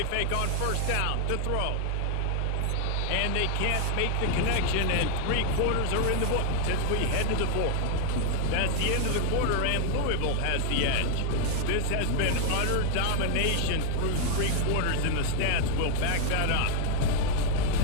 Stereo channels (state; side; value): different; both; correlation 0.00